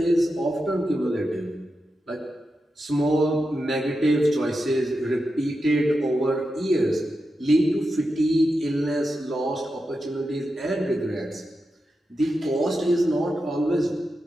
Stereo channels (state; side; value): normal; both; correlation 0.89